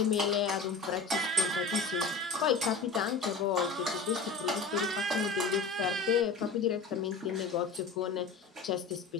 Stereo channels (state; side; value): quieter; right; 4.4 dB